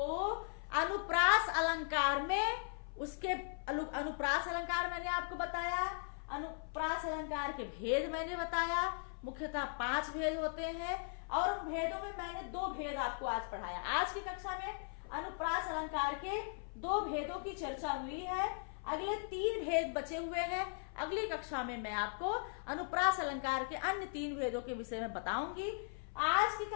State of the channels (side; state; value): right; silent; 52 dB below the other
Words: अनुप्रास अलंकार में उसके अनुप्रास अलंकार मैंने आपको बताया, अनुप्रास अलंकार के भेद मैंने बताया। मुख्यतः 5 भेद होते हैं, और उन भेदों में मैंने 2 भेद आपको आज पढ़ाया। आज की कक्षा में अनुप्रास अलंकार के 2 भेदों की चर्चा हुई है। अगले 3 भेद बचे हुए हैं। अगली कक्षा में मैं आपको अनुप्रास अलंकार के अन्य 3 भेदों के विषय में बताऊंगी। आज की